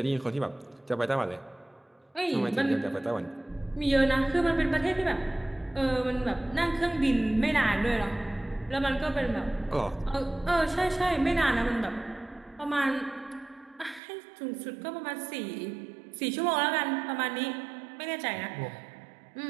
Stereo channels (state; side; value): drops out; left; at 14.0 s